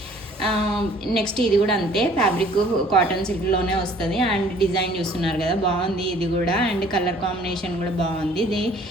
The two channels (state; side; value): normal; both; correlation 0.55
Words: నెక్స్ట్ ఇది కూడా అంతే, ఫ్యాబ్రిక్ కాటన్ సిల్క్లోనే వస్తుంది. అండ్ డిజైన్ చూస్తున్నారు కదా బాగుంది ఇది కూడా. అండ్ కలర్ కాంబినేషన్ కూడా బాగుంది. ఇది